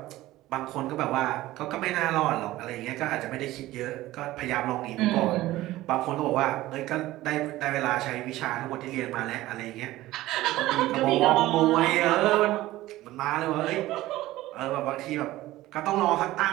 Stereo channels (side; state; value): left; quieter; 16.6 dB